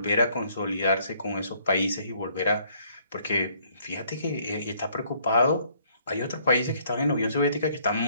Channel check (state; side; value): inverted; both; correlation -0.65